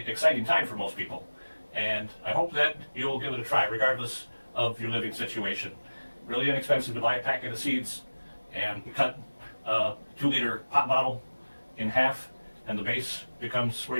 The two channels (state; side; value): inverted; both; correlation -1.00